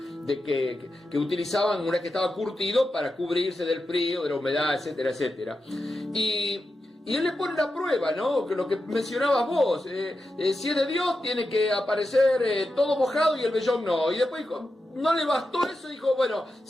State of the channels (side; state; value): both; normal; correlation 0.89